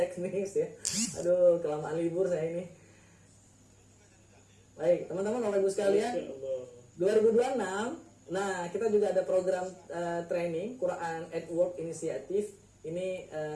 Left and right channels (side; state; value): both; identical; correlation 1.00